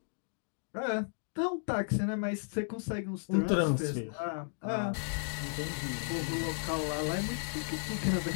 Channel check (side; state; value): right; silent; digital silence